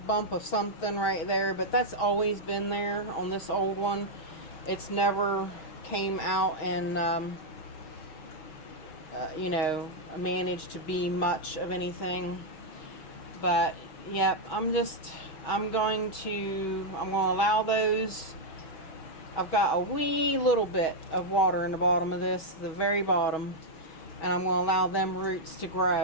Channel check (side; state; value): right; late; 6.4 ms